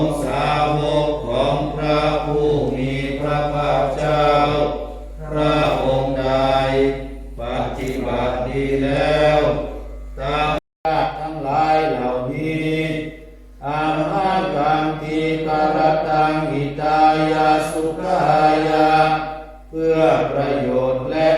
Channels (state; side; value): identical; both; correlation 1.00